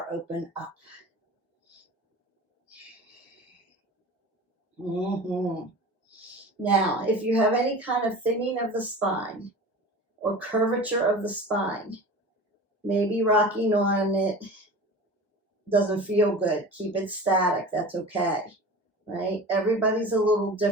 open up. Now, if you have any kind of thinning of the spine or curvature of the spine, maybe rocking on it doesn't feel good. Keep it static. That's okay, right? Everybody's a little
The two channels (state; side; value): normal; both; correlation 0.36